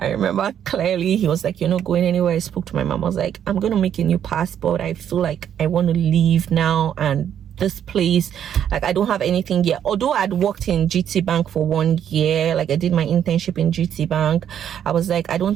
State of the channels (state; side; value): quieter; left; 9.5 dB